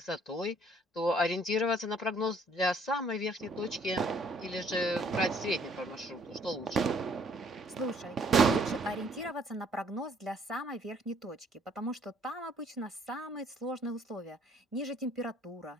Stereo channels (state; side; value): normal; both; correlation 0.62